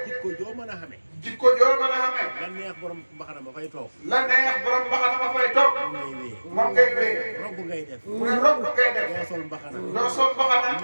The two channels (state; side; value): inverted; both; correlation -1.00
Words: jikko joo mën a xamee jikko joo mën a xamee la neex borom mbaxana ma fay toog la neex borom mbaxana ma fay toog moom ngay wéyee moom ngay wéy robb ngay def mu ne robb ngay def doo sol mbaxana doo sol mbaxana